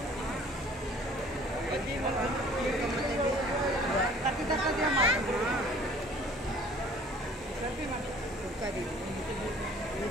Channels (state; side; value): normal; both; correlation 0.52